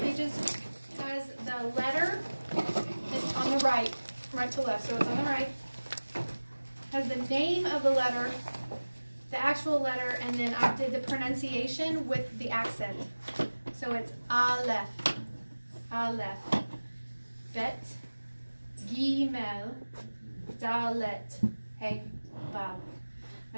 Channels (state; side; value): inverted; both; correlation -1.00